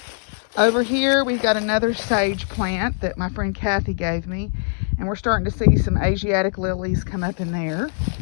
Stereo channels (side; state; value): right; silent; 64 dB below the other